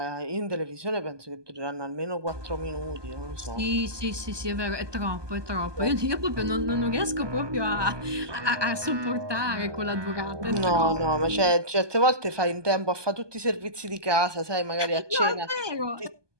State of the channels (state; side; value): late; left; 1.2 ms